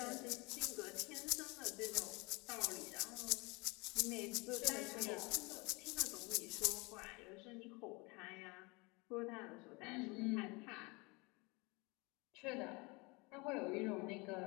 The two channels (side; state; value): right; quieter; 26.9 dB